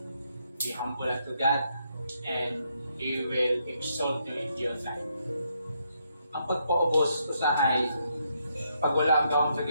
Be humble unto God and He will exalt you in due time. Ang pagpaubos usahay, pag wala ang gawang sa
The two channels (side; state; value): both; inverted; correlation -0.76